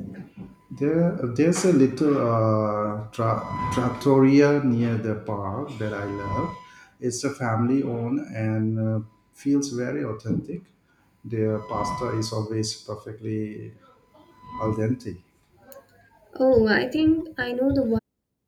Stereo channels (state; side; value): identical; both; correlation 1.00